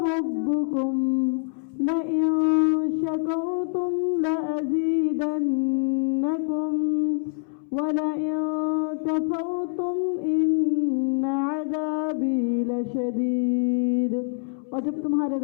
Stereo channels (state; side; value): silent; right; 62 dB below the other